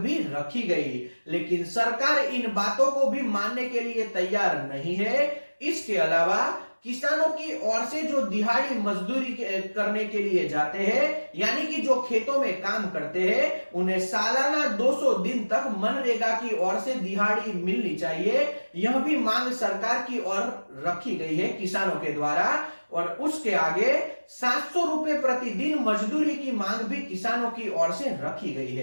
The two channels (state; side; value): inverted; both; correlation -1.00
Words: रखी गई। लेकिन सरकार इन बातों को भी मानने के लिए तैयार नहीं है। इसके अलावा किसानों की ओर से जो दिहाड़ी मजदूरी करने के लिए जाते हैं, यानी कि जो खेतों में काम करते हैं, उन्हें सालाना 200 दिन तक मनरेगा की ओर से दिहाड़ी मिलनी चाहिए। यह भी मांग सरकार की ओर रखी गई है किसानों के द्वारा। और उसके आगे 700 रुपए प्रतिदिन मजदूरी की मांग भी किसानों की ओर से रखी गई